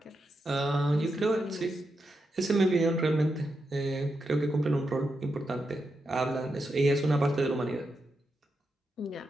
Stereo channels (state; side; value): normal; both; correlation 0.85